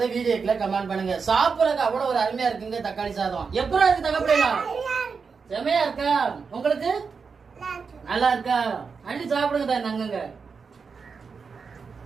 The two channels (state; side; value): quieter; left; 5.4 dB